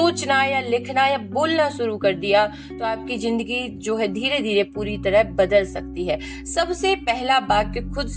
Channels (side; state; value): both; identical; correlation 1.00